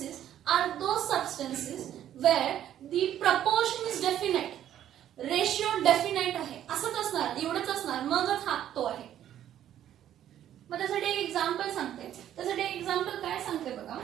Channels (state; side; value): quieter; left; 11.2 dB